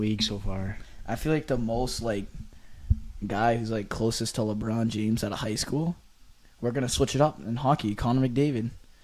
so far. I feel like the most like guy who's like closest to LeBron James out of high school. We're gonna switch it up in hockey. Connor McDavid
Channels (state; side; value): identical; both; correlation 1.00